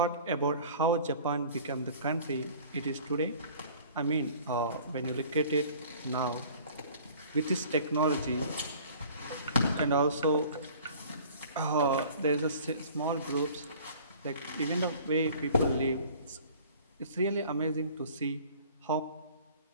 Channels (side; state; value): both; inverted; correlation -0.48